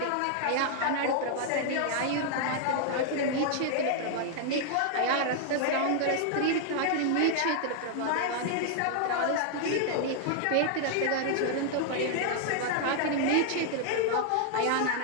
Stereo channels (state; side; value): different; both; correlation 0.00